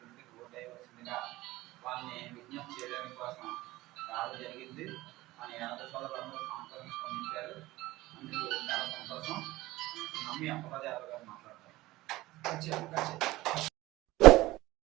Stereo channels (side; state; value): left; quieter; 18.2 dB